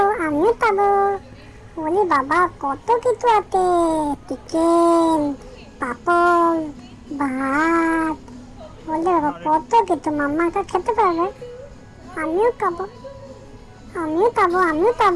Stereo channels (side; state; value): both; identical; correlation 1.00